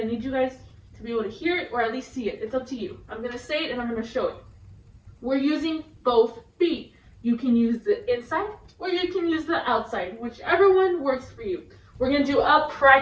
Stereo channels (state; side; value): identical; both; correlation 1.00